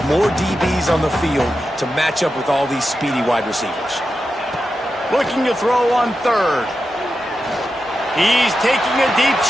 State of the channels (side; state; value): both; normal; correlation 0.90